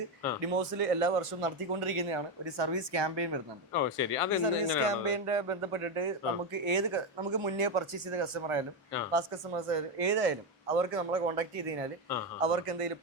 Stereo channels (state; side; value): normal; both; correlation 0.10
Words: ഡിമോസിൽ എല്ലാ വർഷവും നടത്തിക്കൊണ്ടിരിക്കുന്നതാണ് ഒരു സർവീസ് ക്യാമ്പയിൻ വരുന്നുണ്ട്. സർവീസ് ക്യാമ്പയിന്റെ ബന്ധപ്പെട്ടിട്ട് നമുക്ക് മുന്നേ പർച്ചേസ് ചെയ്ത കസ്റ്റമർ ആയാലും പാസ്റ്റ് കസ്റ്റമേഴ്സ് ആയാലും ഏതായാലും അവർക്ക് നമ്മളെ കോൺടാക്ട് ചെയ്ത് കഴിഞ്ഞാൽ അവർക്ക് എന്തെങ്കിലും